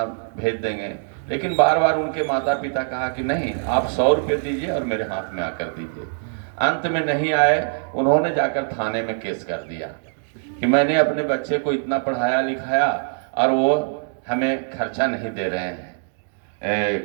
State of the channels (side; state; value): left; silent; digital silence